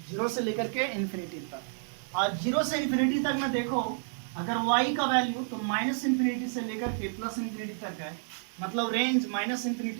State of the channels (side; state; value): left; silent; digital silence